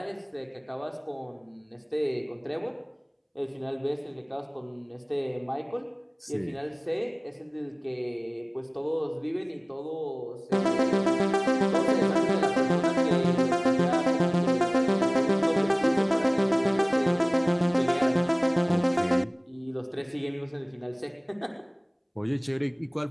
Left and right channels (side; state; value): both; identical; correlation 1.00